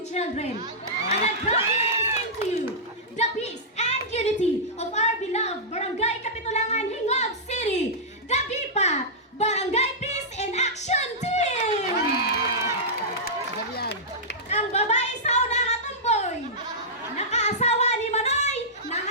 children. And I'm proudly to present to you the peace and unity of our beloved Barangay Kapitulangan, Hingog City, the BIPA, Barangay Peace and Action Team! Ang babae sa una nga tumboy, nakaasawa ni Manoy,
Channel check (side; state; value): both; normal; correlation -0.12